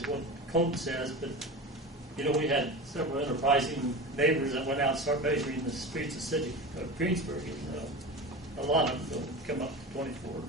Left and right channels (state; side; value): normal; both; correlation 0.29